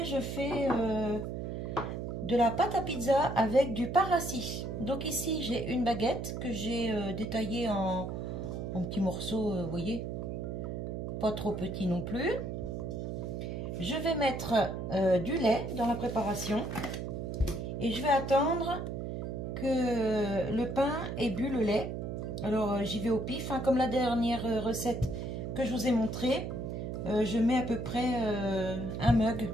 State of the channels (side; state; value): right; noise; hum, 4 dB below the sound